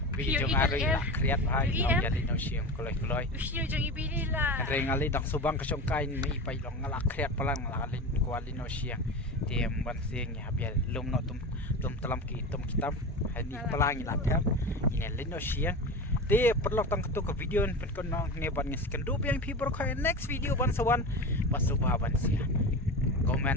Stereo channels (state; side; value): normal; both; correlation 0.26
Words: biji jong ari la kreat hai no jadi no siam koloi Usia jong ibili lah. rengali dak subang ka songkai mi pai long la kreat palang la lin kuali no siang dia ban siang ya biar lum no tum telam ki tum kitab hani palang la tham ini lin no siang dia perlu tang ketu ke video pen kon ngeban ngesken du yang people ko next video ban sawan basubah ban sia